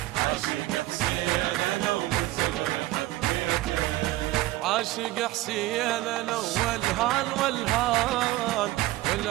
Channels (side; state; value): left; quieter; 17.6 dB